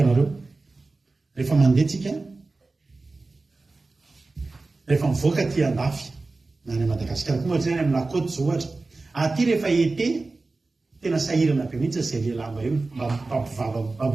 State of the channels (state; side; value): quieter; left; 3.5 dB